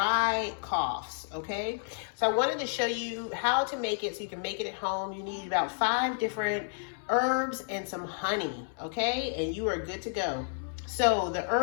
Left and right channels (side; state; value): right; silent; 57 dB below the other